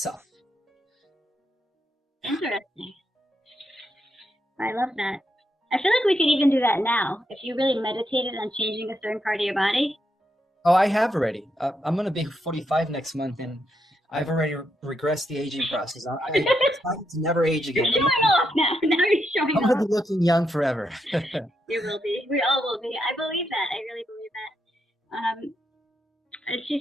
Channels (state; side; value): normal; both; correlation 0.81